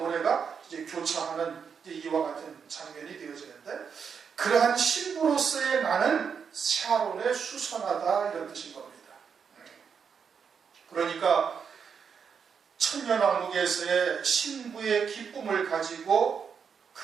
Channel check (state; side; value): quieter; left; 6.6 dB